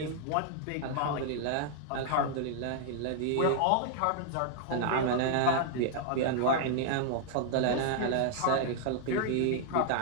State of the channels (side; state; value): both; different; correlation 0.00